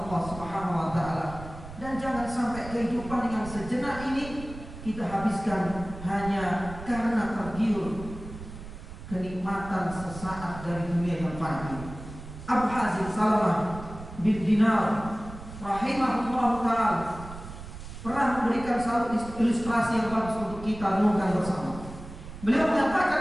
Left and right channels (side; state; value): right; noise; rumble, 13 dB below the sound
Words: Subhanahu wa taala. Dan jangan sampai kehidupan yang sejenak ini kita habiskan hanya karena tergiur kenikmatan sesaat dari dunia yang fani. Abu Hazim Salamah bin Dinar rahimahullah ta'ala pernah memberikan satu ilustrasi yang bagus untuk kita renungkan bersama. Beliau